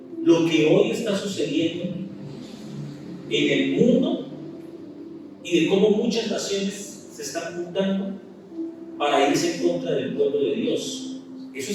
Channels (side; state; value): both; identical; correlation 1.00